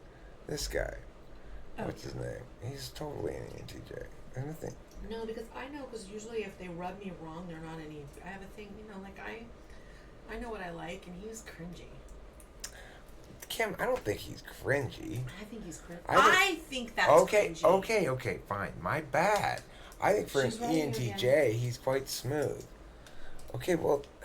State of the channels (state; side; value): identical; both; correlation 1.00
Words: This guy. Oh. What's his name? He's totally an ENTJ. And the thing... No, because usually if they rub me wrong, they're not any. I have a thing, like I know what I like, and he's cringy. Kim, I don't think he's cringy. I think he's cringy. I think that's cringy. Okay, fine. My bad. I think for an ENTJ, he's quite smooth. Okay, well,